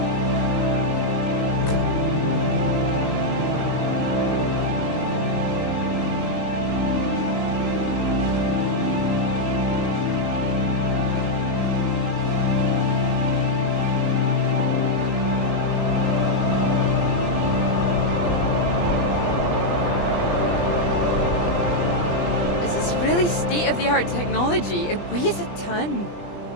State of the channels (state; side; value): late; right; 20 ms